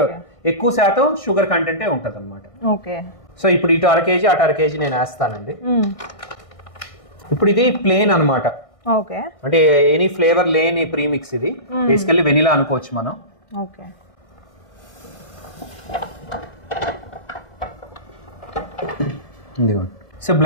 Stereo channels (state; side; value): late; right; 1.6 ms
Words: ఎక్కువ శాతం షుగర్ కంటెంటే ఉంటది అనమాట. సో ఇప్పుడు ఇటు 1/2 kg అటు 1/2 kg నేను వేస్తానండి. ఇప్పుడు ఇది ప్లేన్ అనమాట, అంటే ఎనీ ఫ్లేవర్ లేని ప్రీమిక్స్. ఇది బేసికల్లీ వెనిలా అనుకోవచ్చు మనం. సో